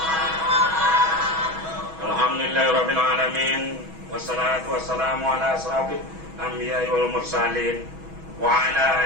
Alhamdulillahirabbil alamin wassalatu wassalamu ala asrofil anbiya'i wal mursalin wa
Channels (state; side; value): late; left; 6.2 ms